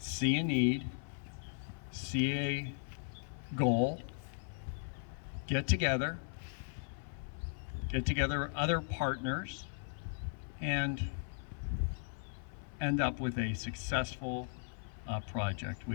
a need, see a goal, get together other partners, and end up with a successful project,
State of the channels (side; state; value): right; silent; 53 dB below the other